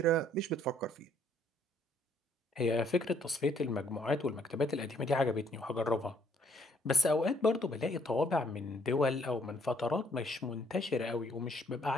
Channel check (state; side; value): normal; both; correlation 0.66